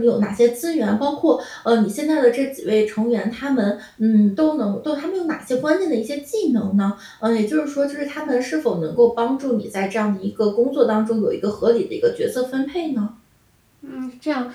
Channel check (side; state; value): both; identical; correlation 1.00